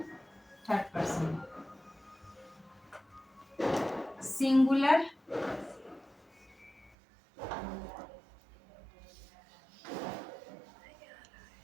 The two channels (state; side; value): drops out; left; at 7.0 s